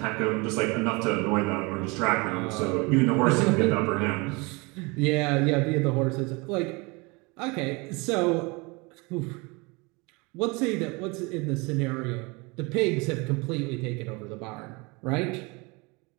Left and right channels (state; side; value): quieter; left; 27.1 dB